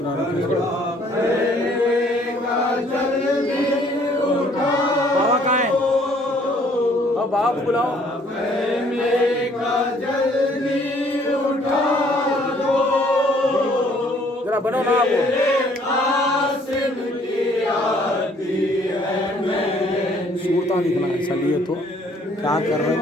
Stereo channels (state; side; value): normal; both; correlation 0.61